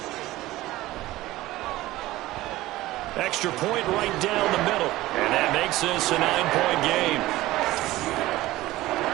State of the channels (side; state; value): left; quieter; 17.2 dB